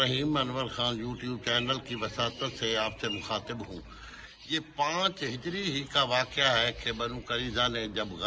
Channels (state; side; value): identical; both; correlation 1.00